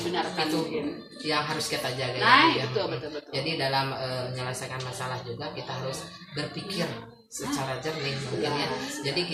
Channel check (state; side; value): identical; both; correlation 1.00